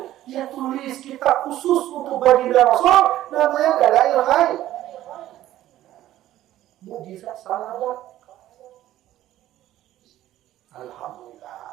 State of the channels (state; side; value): quieter; left; 13.8 dB